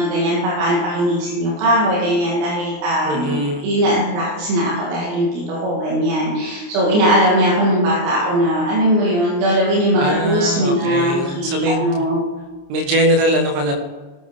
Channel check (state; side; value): late; left; 29 ms